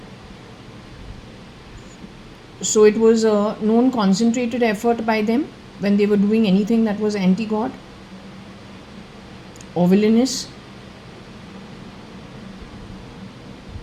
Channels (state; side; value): identical; both; correlation 1.00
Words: So it was a known concentrated effort by them when they were doing anything that was anti-god or villainous.